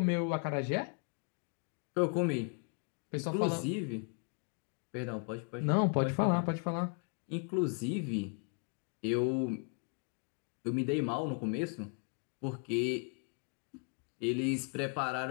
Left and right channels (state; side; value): quieter; right; 39.4 dB